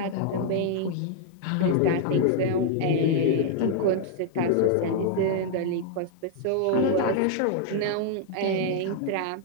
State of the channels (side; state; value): both; different; correlation -0.01